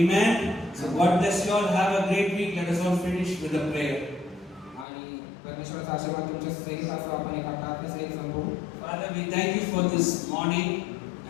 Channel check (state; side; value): drops out; right; at 4.9 s